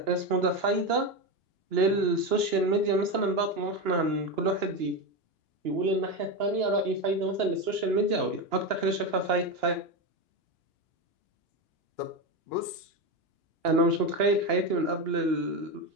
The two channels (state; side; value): late; left; 2.9 ms